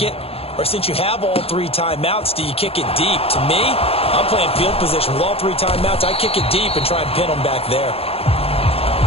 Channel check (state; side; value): late; right; 0.28 ms